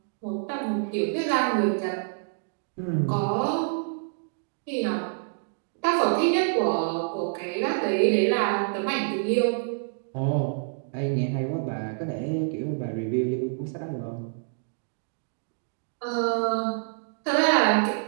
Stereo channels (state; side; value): silent; left; digital silence